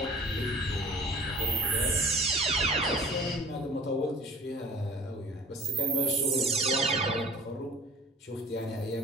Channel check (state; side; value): normal; both; correlation 0.46